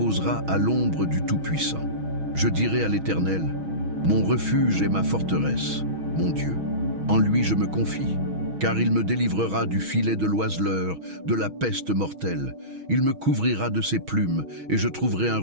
à l'ombre du Tout-Puissant. Je dirai à l'Éternel, mon refuge et ma forteresse, mon Dieu. En lui je me confie, car il me délivrera du filet de l'oiseleur, de la peste mortelle. Il me couvrira de ses plumes et je trouverai un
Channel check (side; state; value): left; late; 6.3 ms